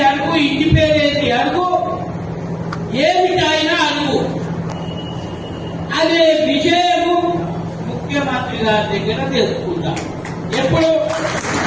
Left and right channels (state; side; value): noise; left; hum, 29 dB below the sound